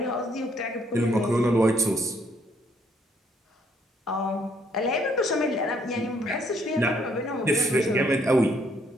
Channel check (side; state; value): both; normal; correlation 0.68